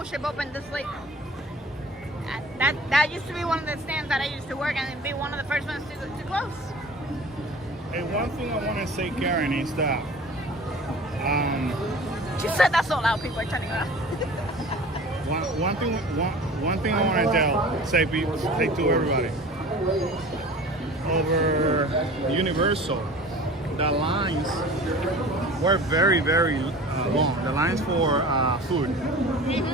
Ship open this late. That used to be one of the stands that I used to work in and be one of the first ones to close. Hey, one thing I want to say, Karen, is that She said that so loud, people are turning around. one thing I want to say to everybody. Over Universal, the lines were very, very long. The lines for food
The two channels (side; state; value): both; normal; correlation 0.41